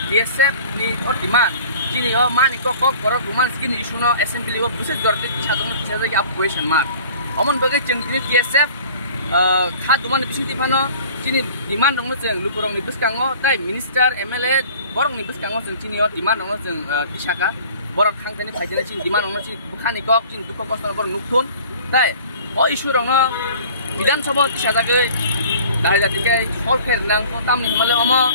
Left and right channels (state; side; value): inverted; both; correlation -0.47